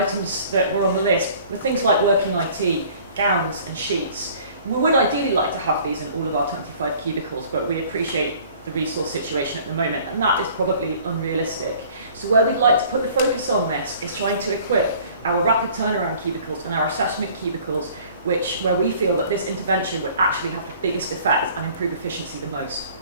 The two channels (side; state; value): both; inverted; correlation -0.52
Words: that were on the list were things like working IT, gowns and sheets. We would ideally like to have these in all of our 25 cubicles, but we appreciate the resource situation at the moment, and that is probably unrealistic. So where we'd like to put the focus on this is trying to equip our rapid turnaround cubicles and our assessment cubicles, where we feel that this intervention would actually have the biggest effect and improve efficiency the most.